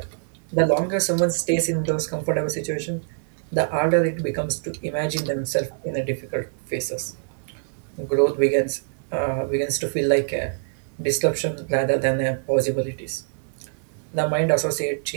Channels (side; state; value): left; silent; 60 dB below the other